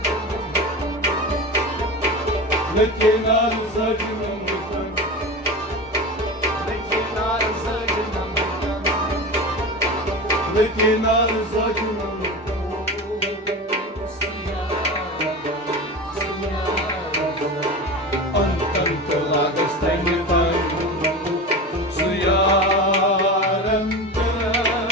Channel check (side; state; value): both; normal; correlation 0.27